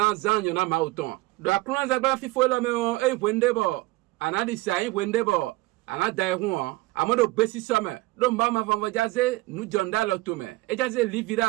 zan yona mau ton do akrun za gba fifo la me o e wende bo anadi sa e wende bo anada e hu amodo gbe si so me do mba ma vanvo jaze nu jonda lo to me e jaze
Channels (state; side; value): quieter; left; 20.9 dB